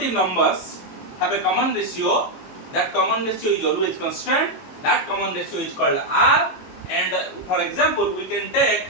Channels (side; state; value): right; late; 22 ms